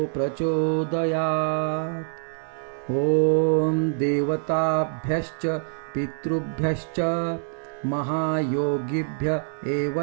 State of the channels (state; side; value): silent; left; 62 dB below the other